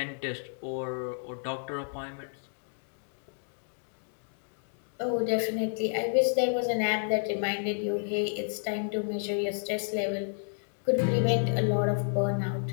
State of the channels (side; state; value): right; silent; digital silence